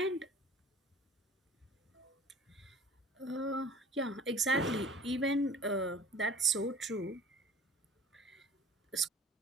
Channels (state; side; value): normal; both; correlation 0.45